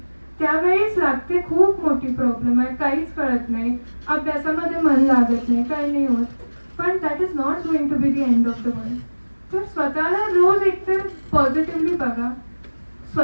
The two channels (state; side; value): inverted; both; correlation -1.00